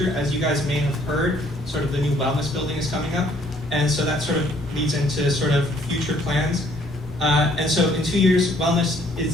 as you guys may have heard. Sort of the new wellness building is coming up, and so that sort of leads into sort of future plans. And so in 2 years, wellness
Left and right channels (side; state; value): both; normal; correlation 0.63